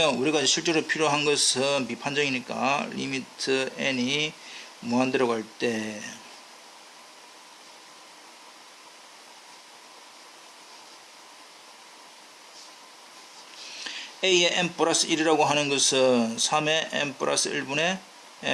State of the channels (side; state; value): both; identical; correlation 1.00